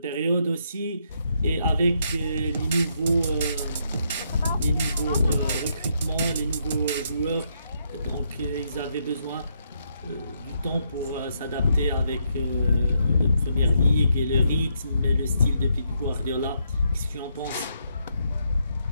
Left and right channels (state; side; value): inverted; both; correlation -0.76